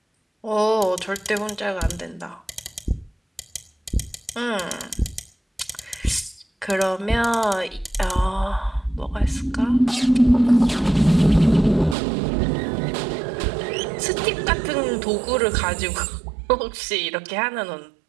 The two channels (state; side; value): drops out; left; at 12.0 s